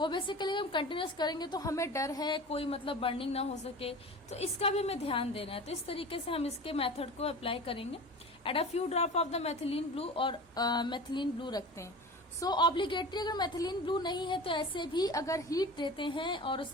बेसिकली हम कंटिन्यूस करेंगे तो हमें डर है कोई मतलब बर्निंग ना हो सके, तो इसका भी हमें ध्यान देना है. तो इस तरीके से हम इसके मेथड को अप्लाई करेंगे. Add a few drop of the methylene blue, और मेथिलीन ब्लू रखते हैं. सो ऑब्लिगेटरी अगर मेथिलीन ब्लू नहीं है तो ऐसे भी अगर हीट देते हैं और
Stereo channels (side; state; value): both; normal; correlation 0.34